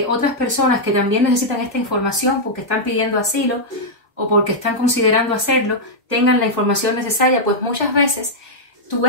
otras personas que también necesitan esta información porque están pidiendo asilo o porque están considerando hacerlo, tengan la información necesaria, pues muchas veces tu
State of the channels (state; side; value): normal; both; correlation -0.05